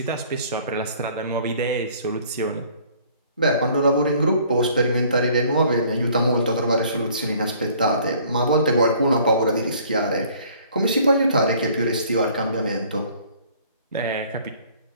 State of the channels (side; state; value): both; inverted; correlation -0.56